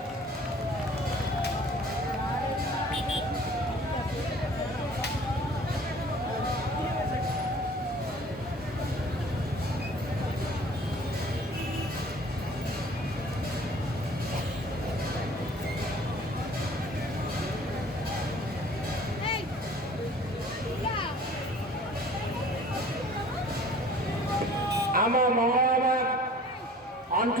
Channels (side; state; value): both; normal; correlation 0.49